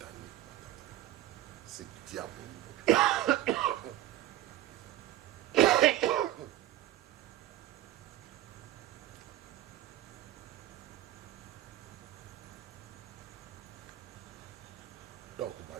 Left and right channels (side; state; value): left; quieter; 14.1 dB